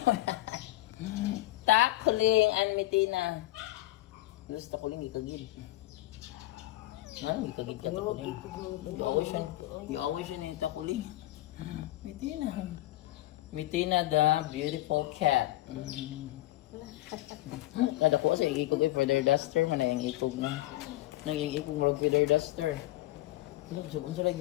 Takuling an Mitina. Lus takuling ikagid. Ano ikagid ka takuling? You always ni takuling. Mitina. Mitina the beautiful cat. Kada ko sa ikog ay feather duster man ang ikog na. Nang ikog mo feather duster. Ano sa unsa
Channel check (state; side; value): quieter; right; 16.7 dB